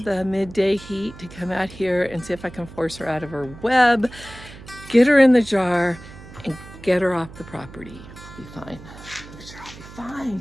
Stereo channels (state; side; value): noise; right; hum, 17 dB below the sound